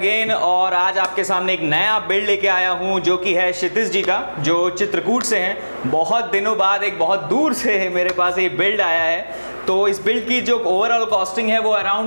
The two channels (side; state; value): both; inverted; correlation -1.00